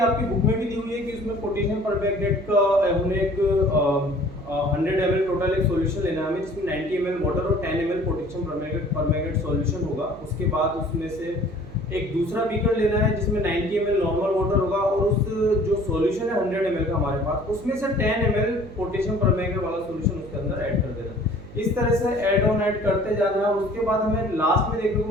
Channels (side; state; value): right; noise; hum, 17 dB below the sound